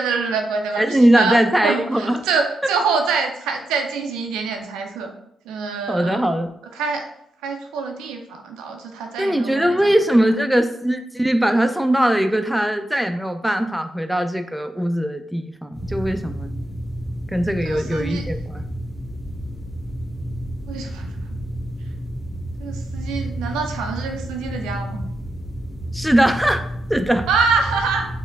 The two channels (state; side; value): normal; both; correlation 0.86